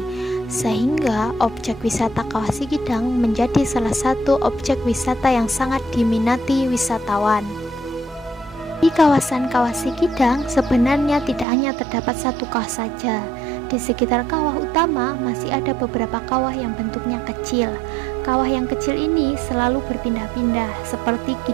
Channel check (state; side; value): drops out; left; at 11.5 s